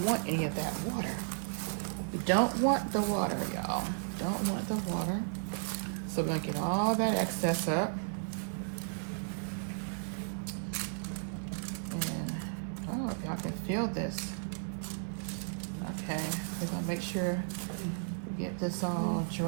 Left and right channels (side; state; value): left; silent; 55 dB below the other